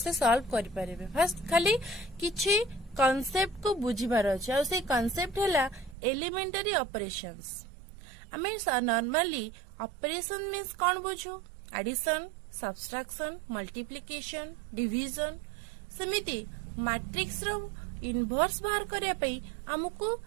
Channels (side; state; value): left; drops out; at 6.0 s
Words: सॉल्व करि परिबे। फर्स्ट खाली किछि कांसेप्ट को बुझिबार अछि और से कांसेप्ट हैला एलिमेंटरी ऑपरेशंस। आमे नॉर्मली ऑपरेशन मीन्स कौन बुझू? Addition, subtraction, multiplication, division. सेमिति मैट्रिक्स रो इनवर्स बाहर करिया पई हमकु